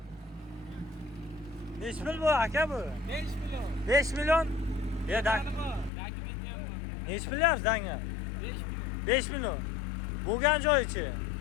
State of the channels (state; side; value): drops out; right; at 5.9 s